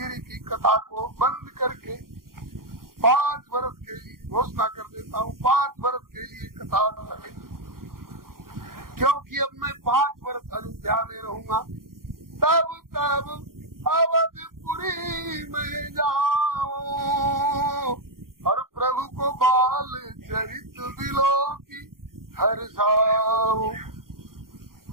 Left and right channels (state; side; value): late; left; 0.92 ms